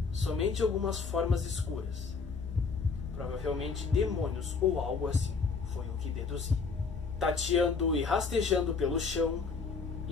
somente algumas formas escuras. Provavelmente demônios ou algo assim, foi o que deduzi. Tateando e rastejando pelo chão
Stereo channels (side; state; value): right; quieter; 4.9 dB